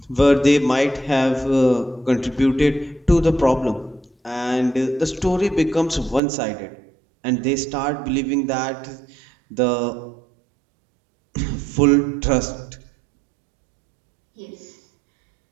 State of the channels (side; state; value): left; drops out; at 6.2 s